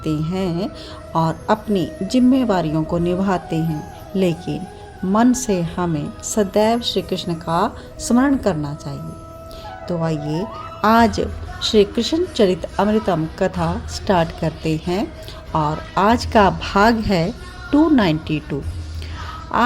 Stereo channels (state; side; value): identical; both; correlation 1.00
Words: हैं और अपनी जिम्मेवारियों को निभाते हैं, लेकिन मन से हमें सदैव श्री कृष्ण का स्मरण करना चाहिए। तो आइए आज श्री कृष्ण चरित अमृतम कथा स्टार्ट करते हैं और आज का भाग है 292।